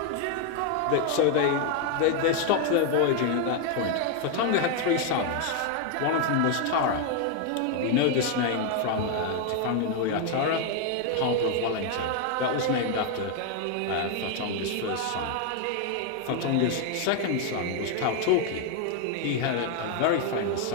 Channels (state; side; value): different; both; correlation 0.01